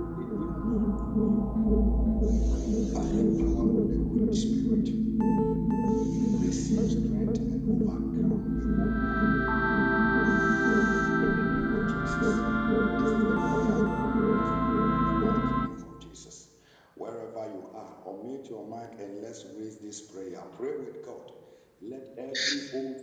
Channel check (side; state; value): both; identical; correlation 1.00